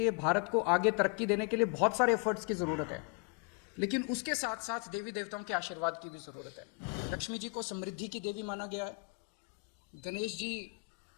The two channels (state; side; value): quieter; right; 34.2 dB